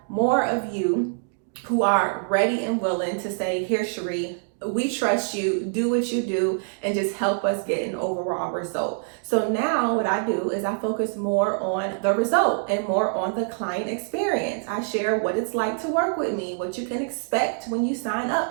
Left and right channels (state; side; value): silent; left; digital silence